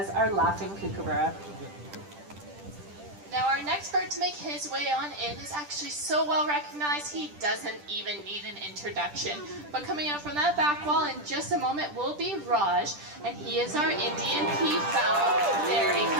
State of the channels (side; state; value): left; late; 10 ms